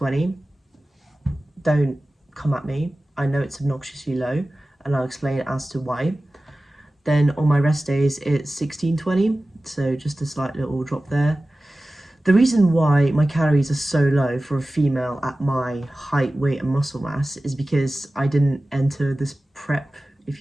Don't come at me. I know it's obnoxiously low, and I'll explain as to why. Then on my rest days, it's 1620, so just a slight little drop there. The reason why my calories are so low for a female at my height, weight and muscle mass is because I didn't enter this prep, if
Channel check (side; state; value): both; normal; correlation 0.96